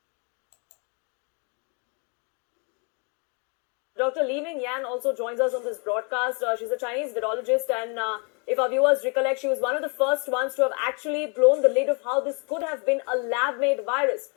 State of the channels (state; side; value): quieter; right; 36.0 dB